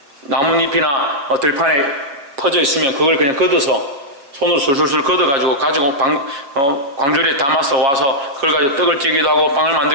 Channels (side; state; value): left; late; 7.2 ms